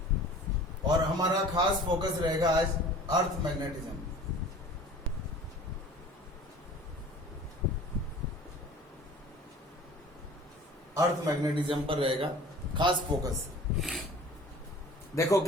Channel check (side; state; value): both; normal; correlation 0.45